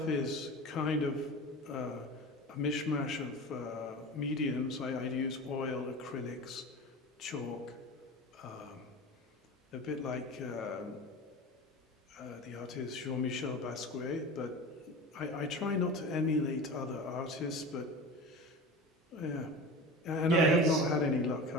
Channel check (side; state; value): both; normal; correlation 0.32